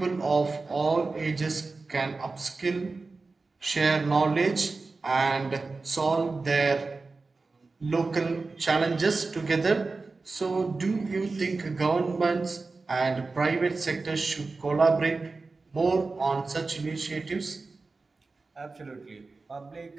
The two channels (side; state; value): left; quieter; 3.8 dB